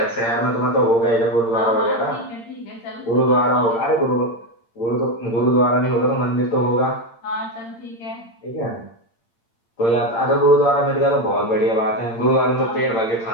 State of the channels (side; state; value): right; late; 8.7 ms